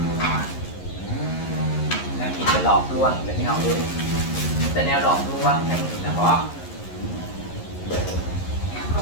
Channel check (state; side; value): late; right; 11 ms